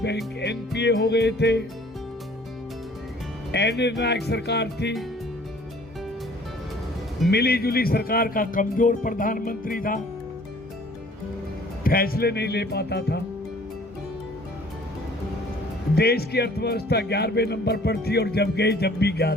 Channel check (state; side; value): normal; both; correlation 0.54